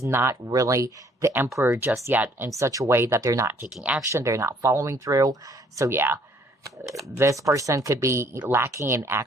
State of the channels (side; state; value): both; normal; correlation 0.62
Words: not really the Emperor just yet in such a way that they're not taking action. They're not following through. So yeah. This person could be lacking in